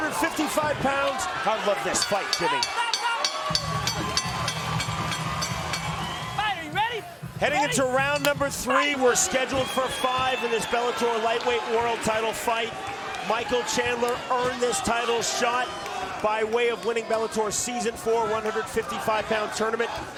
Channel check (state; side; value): identical; both; correlation 1.00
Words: pounds. I love this fight, Jimmy. Are you ready? Heading into round number 3, we're scheduled for 5 in this Bellator Lightweight world title fight. Michael Chandler earned this title shot by way of winning Bellator's Season 4 155-pound tournament,